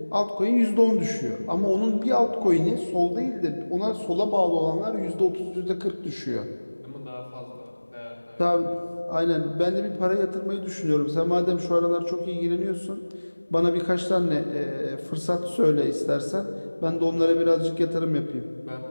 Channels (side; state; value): both; inverted; correlation -1.00